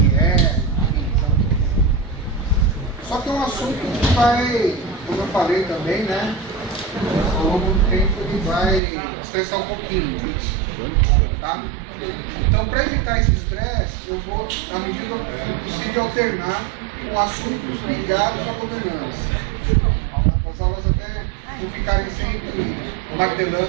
enfim. Só que é um assunto que vai, como eu falei também, né, ao longo do tempo ele vai estressar um pouquinho, tá? Então, para evitar esse estresse, eu vou, à medida do possível, alternar com assuntos ligados à governança. As aulas até não ficarem sempre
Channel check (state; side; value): drops out; left; at 8.8 s